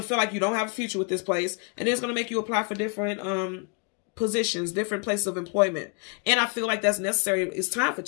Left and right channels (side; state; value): right; quieter; 36.0 dB